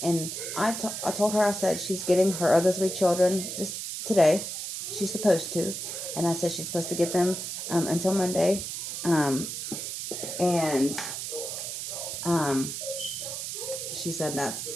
And I told her, I said she's getting her other three children this today. She's supposed to, and I said she's supposed to get them until Monday, um, and um, she said that's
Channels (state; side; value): noise; right; hiss, 5 dB below the sound